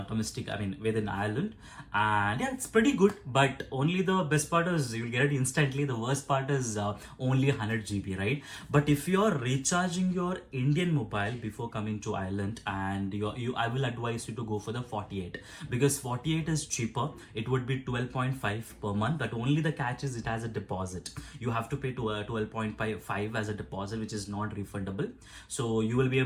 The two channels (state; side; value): identical; both; correlation 1.00